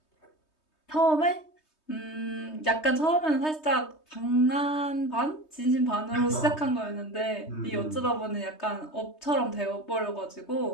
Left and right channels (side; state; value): right; late; 3.2 ms